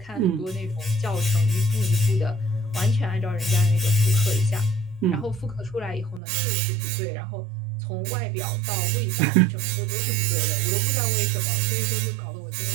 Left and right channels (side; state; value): left; drops out; at 6.2 s